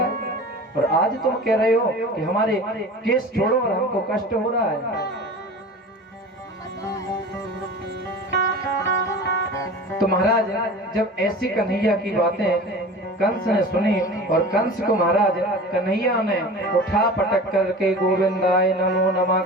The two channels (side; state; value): both; normal; correlation 0.37